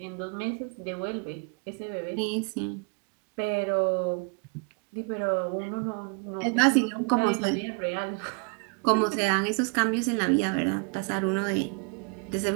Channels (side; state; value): left; quieter; 34.9 dB